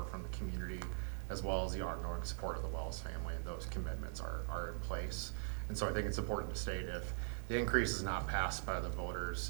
from the community as well as the ongoing support of the Wells family, and those commitments are in place. And so I think it's important to state if the increase is not passed by the voters,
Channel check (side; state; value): left; silent; digital silence